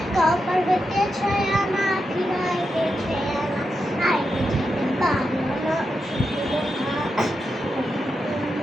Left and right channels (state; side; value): normal; both; correlation 0.87